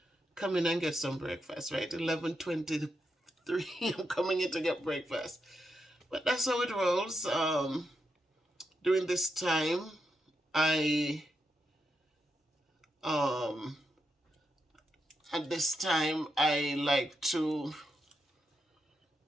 come in and get some breakfast, right? 11:23, I'm coming in to get breakfast. But that's how it rolls. During this time, I like to,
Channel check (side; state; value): both; normal; correlation 0.84